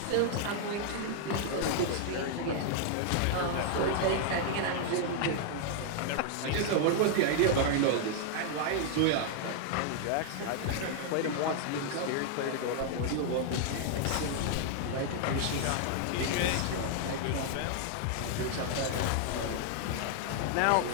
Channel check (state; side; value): different; both; correlation 0.00